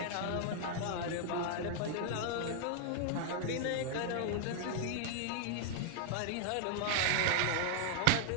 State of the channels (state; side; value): different; both; correlation -0.01